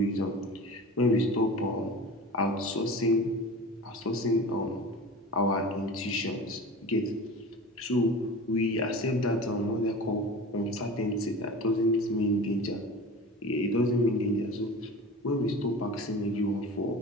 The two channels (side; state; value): both; normal; correlation 0.35